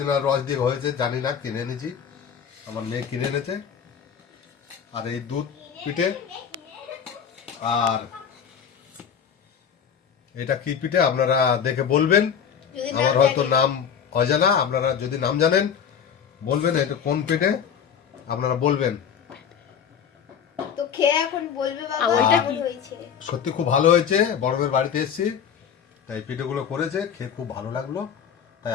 রস দিয়ে হয়েছে জানি না, কিনে এনেছি, আমার মেয়ে কিনে এনেছে। আর এই দুধ পিঠে, আর এটা কি পিঠে আপনারা দেখে বলবেন। যদি আমার নাম হয়তো জানি। নাম অজানা, আপনারা যদি নাম জানেন বলবেন এটা কোন পিঠে, আপনারা বলবেন। তো খেয়ে এখন বলবে বাবা ওইটা কেমন হয়েছে। সত্যি খুব ভালো হয়েছে, বড়দের বাড়িতে এসেছি তাই পিঠেগুলো করেছে, খেয়ে খুব ভালো লাগলো, তাই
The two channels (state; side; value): quieter; right; 7.7 dB